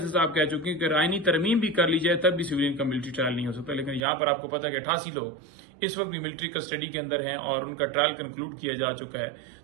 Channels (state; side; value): drops out; left; at 4.0 s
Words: صاحب کہہ چکے ہیں کہ آئینی ترمیم بھی کر لی جائے تب بھی سویلین کا ملٹری ٹرائل نہیں ہو سکتا، لیکن یہاں پر آپ کو پتا ہے کہ 88 لوگ اس وقت بھی ملٹری کسٹڈی کے اندر ہیں اور ان کا ٹرائل کنکلوڈ کیا جا چکا ہے،